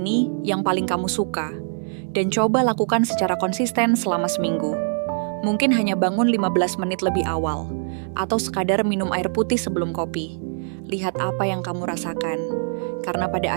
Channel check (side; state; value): left; silent; digital silence